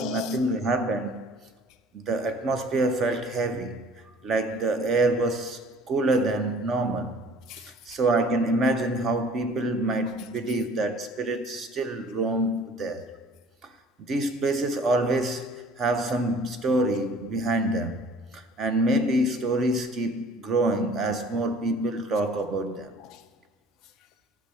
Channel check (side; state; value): both; normal; correlation 0.51